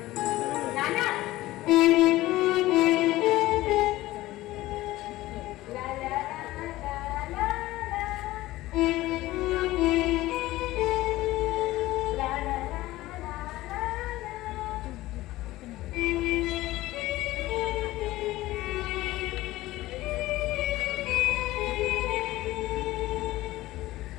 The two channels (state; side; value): quieter; right; 17.2 dB